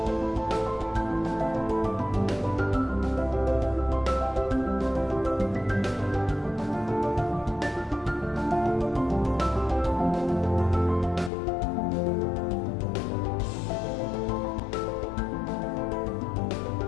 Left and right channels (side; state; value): right; drops out; at 11.3 s